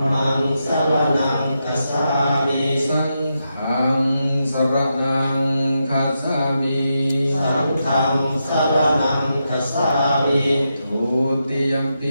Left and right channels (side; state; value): both; inverted; correlation -0.85